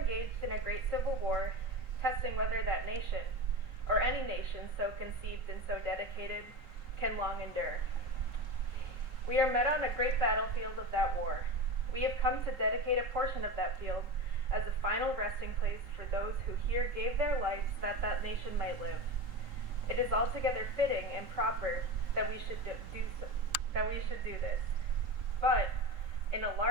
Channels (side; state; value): left; late; 3.8 ms